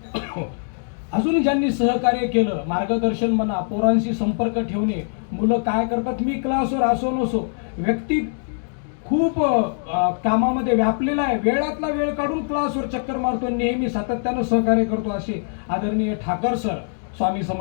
अजून ज्यांनी सहकार्य केलं, मार्गदर्शन म्हणा, पोरांशी संपर्क ठेवणे, मुलं काय करतात, मी क्लासवर असो नसो, व्यक्ती खूप कामामध्ये व्यापलेला आहे, वेळातला वेळ काढून क्लासवर चक्कर मारतो, नेहमी सातत्यानं सहकार्य करतो, असे आदरणीय ठाकर सर स्वामी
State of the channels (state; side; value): silent; right; digital silence